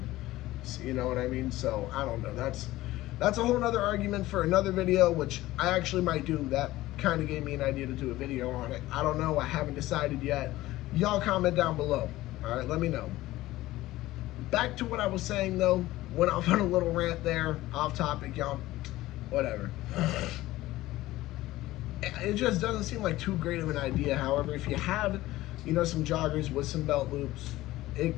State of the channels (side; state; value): right; quieter; 16.8 dB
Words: You know what I mean? So, I don't know. That's a whole nother argument for another video, which I actually might do. That kind of gave me an idea to do a video on it. I don't know. I haven't decided yet. Y'all comment down below. All right, let me know. Back to what I was saying, though. Went off on a little rant there, off topic, y'all. Whatever. It just doesn't seem like too great of an idea. However, if you have, some joggers with some belt loops, it